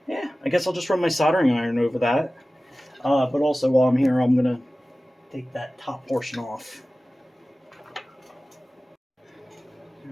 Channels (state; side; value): normal; both; correlation 0.96